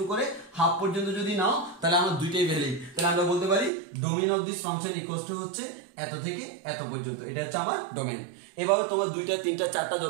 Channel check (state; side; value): drops out; left; at 3.7 s